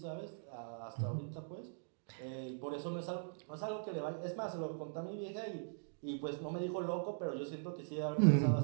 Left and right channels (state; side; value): silent; left; digital silence